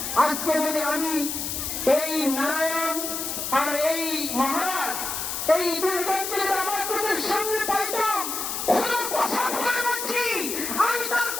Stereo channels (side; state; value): left; noise; hiss, 3 dB below the sound